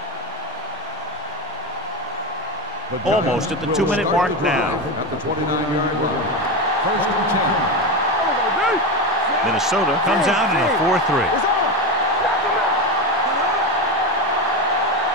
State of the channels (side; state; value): both; normal; correlation 0.18